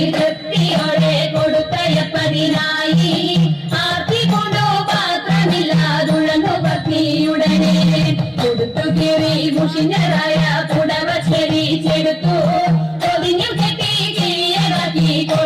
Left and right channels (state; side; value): identical; both; correlation 1.00